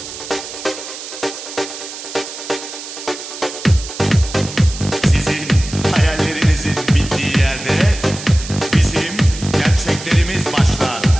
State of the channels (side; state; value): right; noise; hiss, 11 dB below the sound